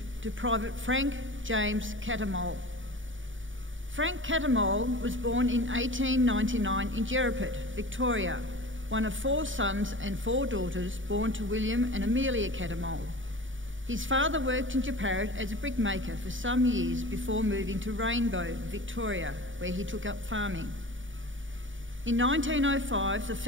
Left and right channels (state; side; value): late; left; 0.56 ms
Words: to Private Frank James Cattermole. Frank Cattermole was born in 1899 in Jerraput, Victoria, one of 4 sons and 4 daughters born to William and Amelia Cattermole. His father worked in Jerraput as a brickmaker for some years before moving to Rainbow, Victoria, where he took up farming. In 1905, the